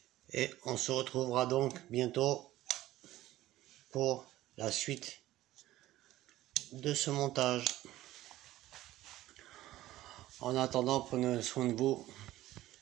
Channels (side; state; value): left; quieter; 15.4 dB